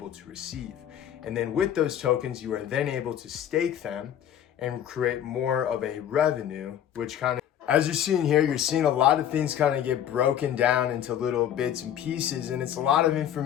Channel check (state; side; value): quieter; right; 10.2 dB